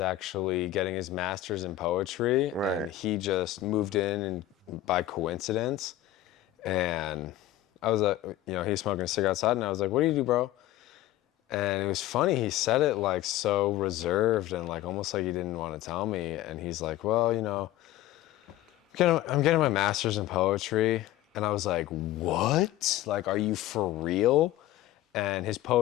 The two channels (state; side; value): quieter; right; 14.1 dB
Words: getting his master's in poetry, Right. and he just moved in and by coincidence. And I was like, he's smoking a cigarette outside, and I was like, "What do you do, bro?" And it was funny, he said it like so reserved and like almost like he didn't want to tell me. And he's like, "Well, I'm getting my master's in poetry." And I was like, "What? Like, are you for real?" And his